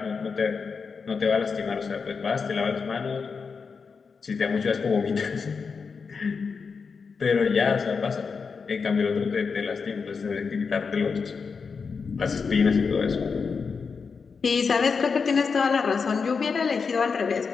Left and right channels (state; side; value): quieter; right; 5.3 dB